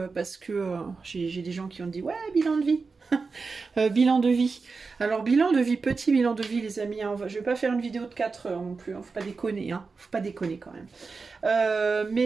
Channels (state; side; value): quieter; left; 4.5 dB